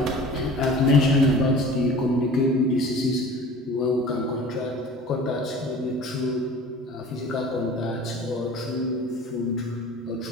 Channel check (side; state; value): both; normal; correlation 0.42